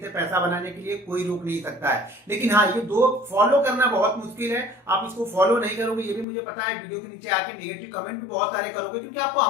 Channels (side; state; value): right; drops out; at 6.2 s